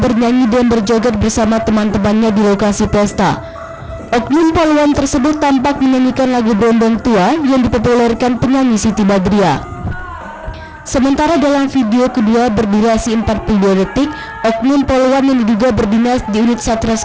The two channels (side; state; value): both; identical; correlation 1.00